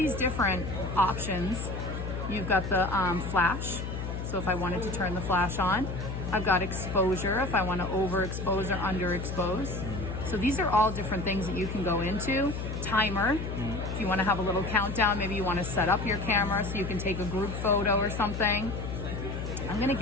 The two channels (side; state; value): left; noise; hum, 5 dB below the sound